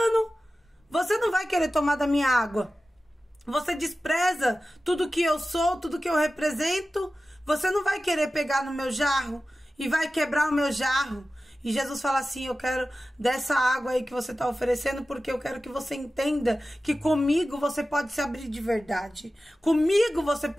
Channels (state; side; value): normal; both; correlation 0.95